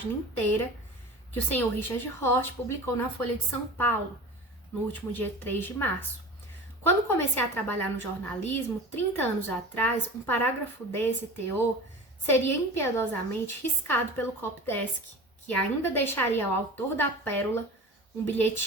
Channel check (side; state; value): both; normal; correlation 0.35